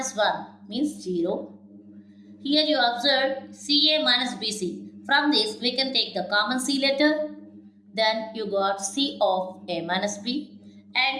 1 means 0. Here you observe CA minus BC. From this we can take the common C letter. Then you got C of A minus B.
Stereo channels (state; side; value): identical; both; correlation 1.00